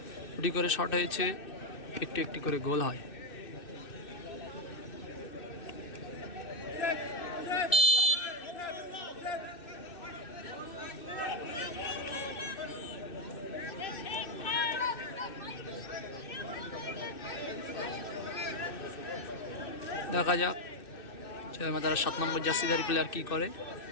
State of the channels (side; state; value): right; late; 2.6 ms